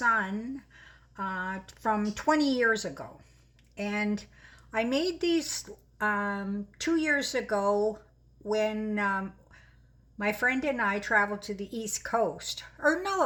from 20 years ago. And I made these 2 years ago when my friend and I traveled to the East Coast. Or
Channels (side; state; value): both; identical; correlation 1.00